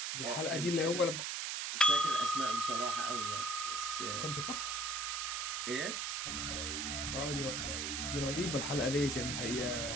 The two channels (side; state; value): right; noise; hiss, 1 dB below the sound